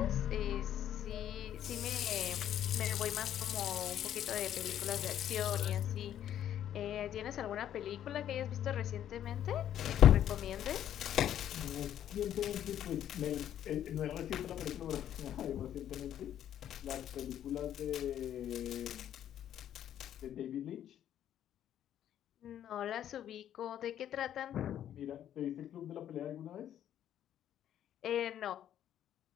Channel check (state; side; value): quieter; right; 10.7 dB